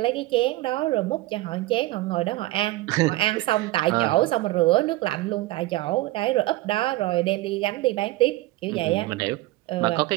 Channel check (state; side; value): quieter; left; 18.5 dB